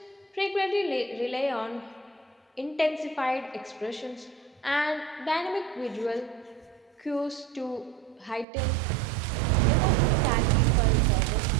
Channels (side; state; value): left; drops out; at 8.5 s